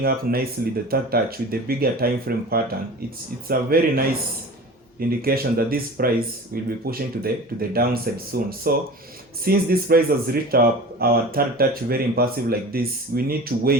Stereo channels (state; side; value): normal; both; correlation 0.37